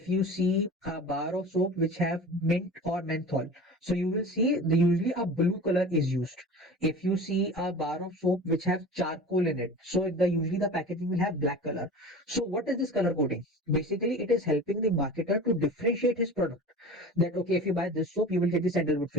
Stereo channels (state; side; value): normal; both; correlation 0.36